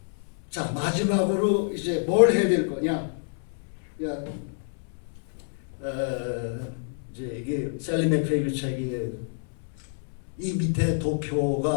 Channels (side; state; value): right; silent; 60 dB below the other